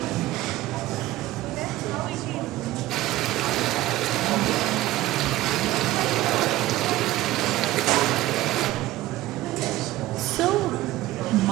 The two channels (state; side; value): quieter; left; 16.3 dB